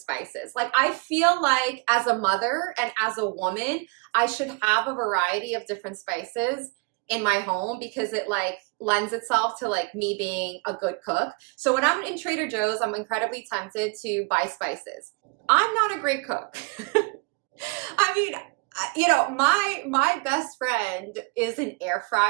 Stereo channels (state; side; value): quieter; left; 30.1 dB